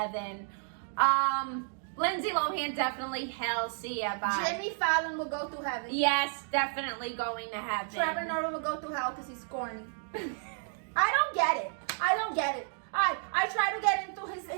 Lindsay Lohan definitely hell. See ya. Bye. Jimmy Fallon will go to heaven. Yes, definitely going to heaven. Trevor Noah will go to hell because he's corny. I don't get it. I try to get into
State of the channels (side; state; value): left; silent; 57 dB below the other